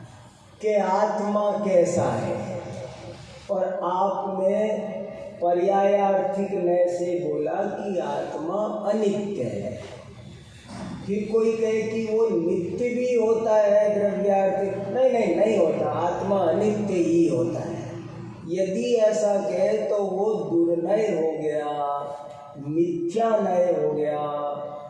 कि आत्मा कैसा है, और आपने पर्यायार्थिक नय से बोला कि आत्मा अनित्य है। फिर कोई कहे कि वो नित्य भी होता है द्रव्यार्थिक, नहीं होता, आत्मा अनित्य ही होता है। यदि ऐसा कहे तो वो दुर्नय हो गया, मिथ्या नय हो गया,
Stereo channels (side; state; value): both; identical; correlation 1.00